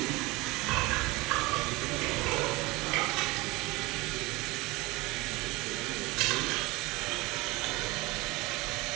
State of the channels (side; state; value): left; quieter; 22.5 dB